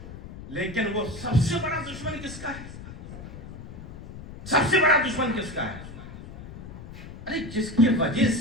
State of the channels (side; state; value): left; noise; rumble, 13 dB below the sound